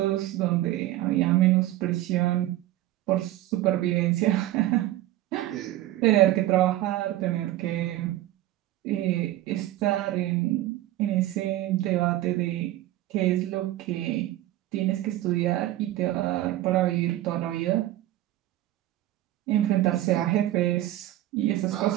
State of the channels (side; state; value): left; quieter; 15.0 dB